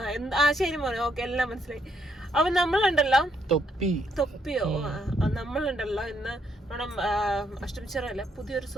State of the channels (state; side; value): normal; both; correlation 0.74